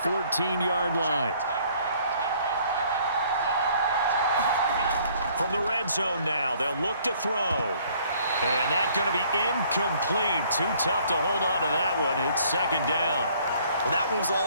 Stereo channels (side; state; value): both; inverted; correlation -0.60